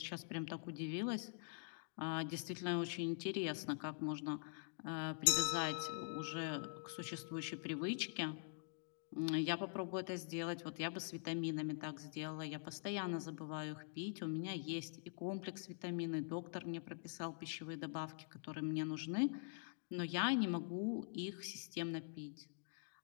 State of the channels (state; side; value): silent; right; digital silence